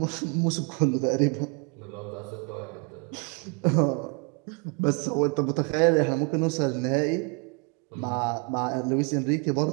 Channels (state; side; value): quieter; left; 32.6 dB